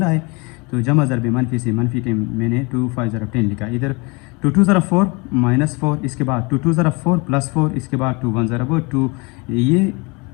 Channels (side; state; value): right; quieter; 28.4 dB